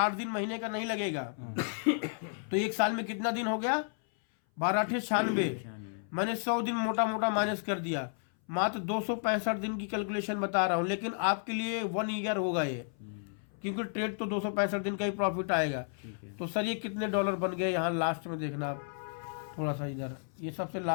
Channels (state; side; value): silent; right; 56 dB below the other